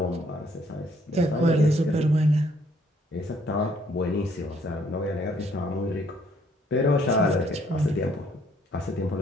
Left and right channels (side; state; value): both; normal; correlation 0.65